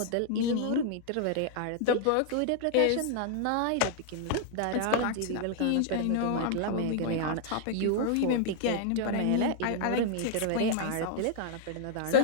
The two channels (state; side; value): different; both; correlation -0.01